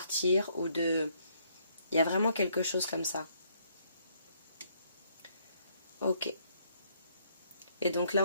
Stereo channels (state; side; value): inverted; both; correlation -0.69